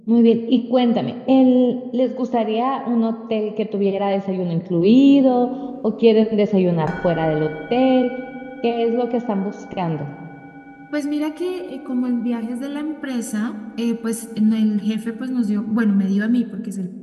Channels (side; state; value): both; identical; correlation 1.00